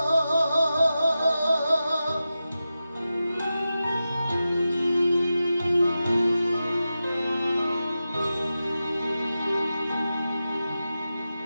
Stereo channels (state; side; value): inverted; both; correlation -0.92